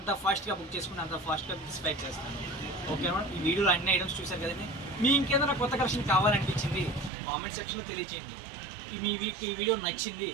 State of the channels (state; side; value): drops out; left; at 7.1 s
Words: ఫాస్ట్గా బుక్ చేసుకుంటే అంత ఫాస్ట్గా డిస్పాచ్ చేస్తాను. ఓకే మేడం, ఈ వీడియోలో అన్ని ఐటమ్స్ చూసారు కదండి. మీ ఇంకేదైనా కొత్త కలెక్షన్ కావాలనిపించింది కామెంట్ సెక్షన్లో తెలియచేయండి. ఈ వీడియో నచ్చింది